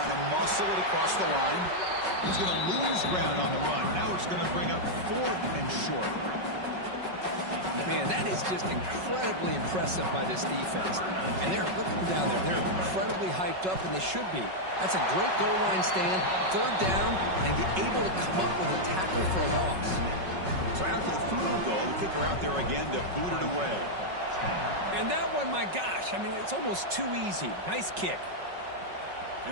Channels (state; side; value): late; left; 5.4 ms